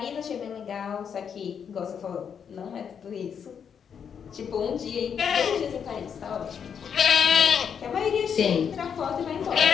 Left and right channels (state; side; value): quieter; right; 7.4 dB